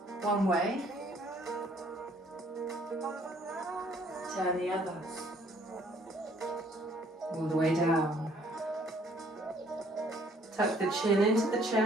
one way, turn the other, all the way down. Tuck the chin into the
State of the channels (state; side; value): normal; both; correlation 0.61